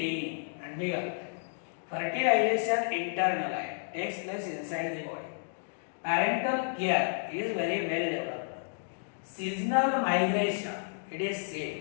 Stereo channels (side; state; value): right; silent; digital silence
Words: अंडी घालतात. फर्टिलायझेशन इंटरनल आहे, takes place inside the body. Parental care is very well developed. Seasonal migration it is